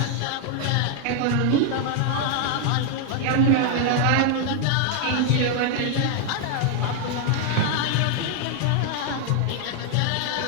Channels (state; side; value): different; both; correlation 0.00